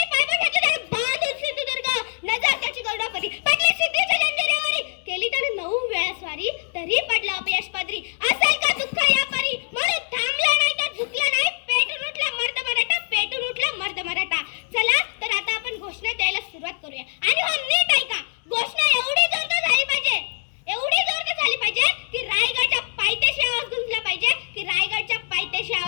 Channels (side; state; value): right; silent; digital silence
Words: पायबा घेतलं त्याने, बांधून सिंधुदुर्ग, नजर त्याची गरुडापरी, पडली सिद्धीच्या जंजिरेवरी, केली त्याने 9 वेळा स्वारी, तरी पडला अपयश पदरी. असेल का दुःख या परी, म्हणून थांबला नाही तर झुकला नाही, पेटून उठला मर्द मराठा, पेटून उठला मर्द मराठा. चला तर आता आपण घोषणा द्यायला सुरुवात करूया. आणि हो नीट ऐका, घोषणा एवढी जोरदार झाली पाहिजे की रायगडच्या पायथ्याशी